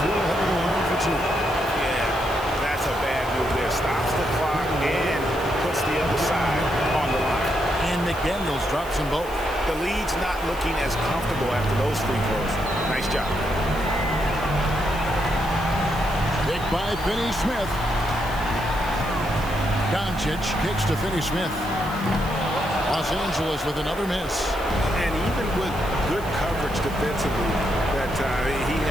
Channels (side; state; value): right; noise; hiss, 18 dB below the sound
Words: head to the line for 2. Yeah, that's a bad move there. Stops the clock and puts the other side on the line. And McDaniels drops them both. The lead's not looking as comfortable after those free throws. Nice job. Picked by Finney-Smith. Doncic kicks to Finney-Smith. Los Angeles with another miss. And even with good coverage defensively, that he